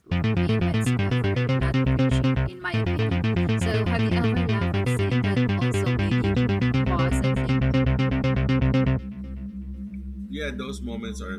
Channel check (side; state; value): both; identical; correlation 1.00